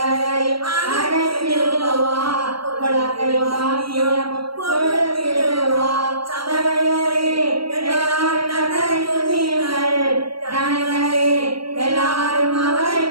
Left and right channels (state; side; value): late; left; 0.74 ms